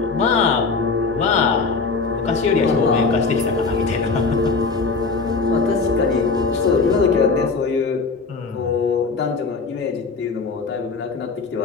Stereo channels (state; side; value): quieter; right; 4.4 dB